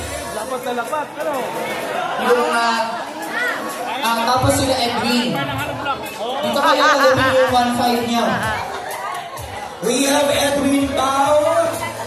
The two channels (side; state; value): both; identical; correlation 1.00